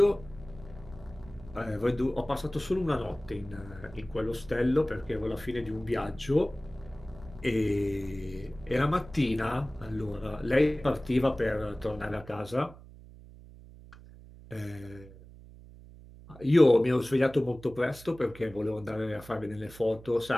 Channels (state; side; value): noise; right; hum, 19 dB below the sound